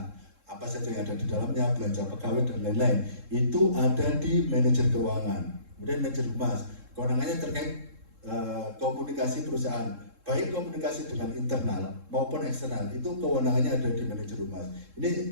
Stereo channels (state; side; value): late; left; 3.7 ms